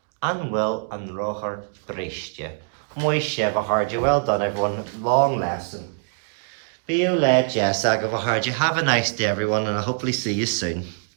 An bhfuil an ráthar briste. Muy sibh a hard. Well done, everyone. Long lesson. Be you led, Jess, I go hard. You have a nice day, everyone, and I'll hopefully see you soon.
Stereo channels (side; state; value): left; silent; digital silence